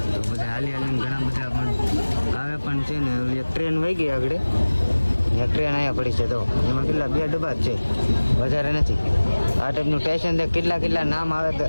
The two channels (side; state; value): both; inverted; correlation -1.00